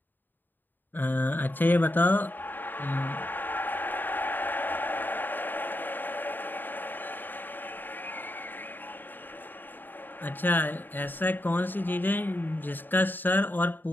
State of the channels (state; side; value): late; right; 0.091 ms